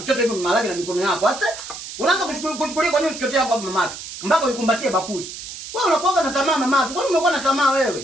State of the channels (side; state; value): right; noise; hiss, 11 dB below the sound